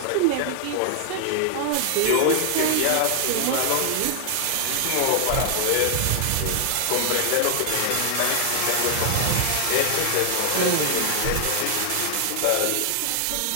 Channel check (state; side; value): different; both; correlation 0.00